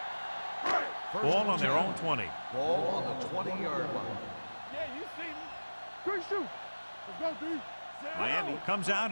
Ball on their own 20. Ball on the 20-yard line. Yeah, you see me. Quick shoot. Let's go, D. Miami comes out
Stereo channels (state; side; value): inverted; both; correlation -1.00